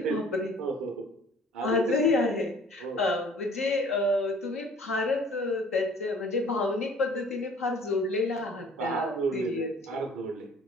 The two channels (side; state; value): both; normal; correlation 0.52